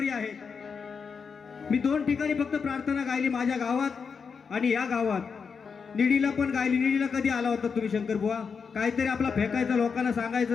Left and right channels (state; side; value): quieter; right; 5.8 dB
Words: आहेत, मी 2 ठिकाणी फक्त प्रार्थना गायली, माझ्या गावात आणि या गावात। निडीला पण गायली। निडीला कधी आला होता तुम्ही शंकर बुवा? काहीतरी आपला फेकायचं, लोकांना